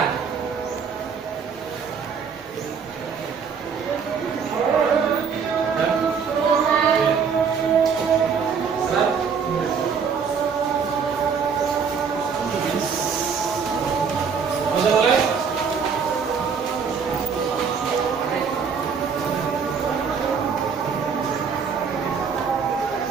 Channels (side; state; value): left; quieter; 6.2 dB